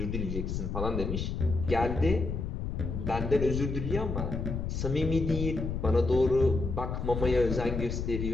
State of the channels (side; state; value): left; noise; rumble, 3 dB below the sound